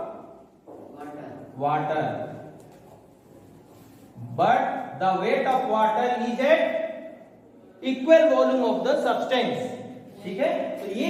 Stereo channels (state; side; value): identical; both; correlation 1.00